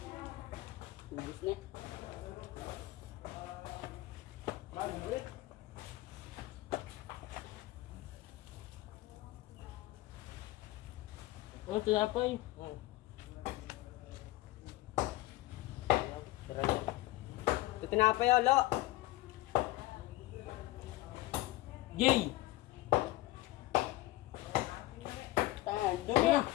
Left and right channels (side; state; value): right; quieter; 18.0 dB